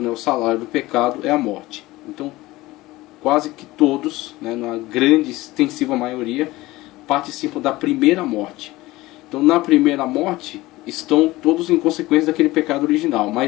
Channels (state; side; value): quieter; right; 18.9 dB